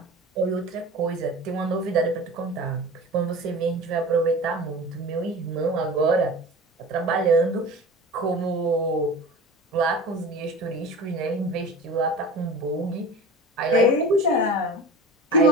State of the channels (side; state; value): both; normal; correlation 0.35